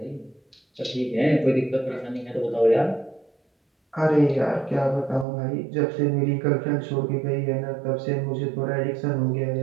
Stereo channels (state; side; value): drops out; left; at 5.2 s